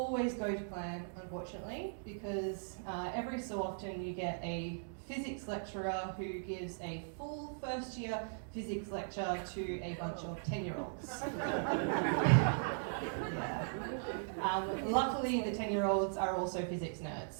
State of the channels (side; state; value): left; silent; digital silence